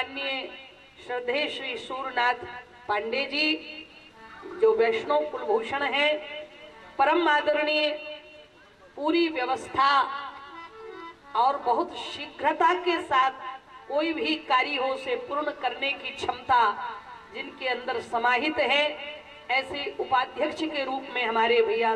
श्रद्धेय श्री सूरनाथ पांडे जी, जो वैष्णव कुलभूषण हैं, परम आदरणीय, पूरी व्यवस्था और बहुत शीघ्रता के साथ कोई भी कार्य हो उसे पूर्ण करने की क्षमता जिनके अंदर समाहित है, ऐसे उपाध्यक्ष के रूप में हमारे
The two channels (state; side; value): identical; both; correlation 1.00